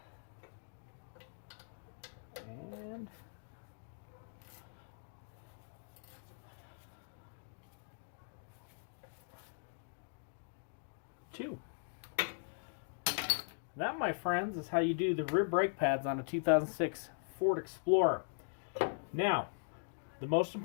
And two. That, my friends, is how you do the rear brake pads on a 2006 Ford Explorer. Now, the most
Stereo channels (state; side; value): silent; right; digital silence